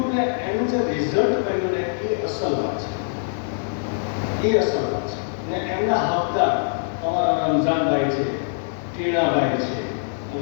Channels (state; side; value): silent; right; digital silence